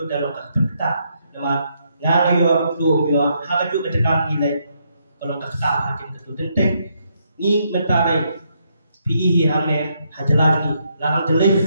dalam kata nama ngare yo do yo haka juga tekan nilai kalau kata hakim itu tentang ni mentai PE hamne hajalan ni larang jelek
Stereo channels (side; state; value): both; inverted; correlation -0.76